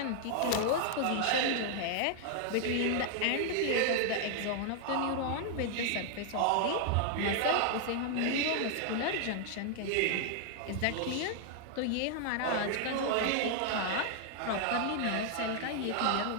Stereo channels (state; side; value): different; both; correlation 0.00